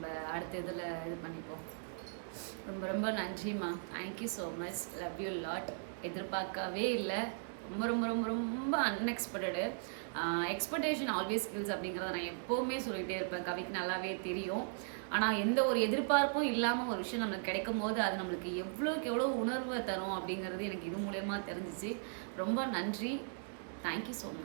அடுத்த இதில் இது பண்ணிப்போம். ரொம்ப ரொம்ப நன்றிம்மா. Thank you so much. Love you lot. எதிர்பார்க்கவே இல்லை, ரொம்ப ரொம்ப ரொம்ப ரொம்ப அன்எக்ஸ்பெக்டடு. எக்ஸ்பெக்டேஷன் ஆல்வேஸ் ஸ்கில்ஸ் அப்படிங்கிறத நான் எப்போவுமே சொல்லிகிட்டே இருப்பேன், கவிக்கு நல்லாவே தெரியும். ஆனால் எந்த ஒரு எதிர்பார்ப்பும் இல்லாமல் ஒரு விஷயம் நம்மளுக்கு கிடைக்கும் போது அது நம்மளுக்கு எவ்வளோக்கு எவ்வளோ உணர்வை தரும் அப்படிங்கிறது எனக்கு இது மூலயமா தெரிஞ்சிச்சு. ரொம்ப நன்றி. Thank you so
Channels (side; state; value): left; silent; digital silence